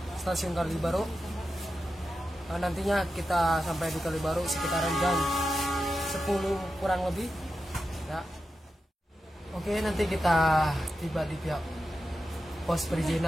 stasiun Kalibaru. Nantinya kita sampai di Kalibaru sekitaran jam 10 kurang lebih. Ya. Oke, nanti kita tiba di pihak pos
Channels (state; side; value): normal; both; correlation 0.90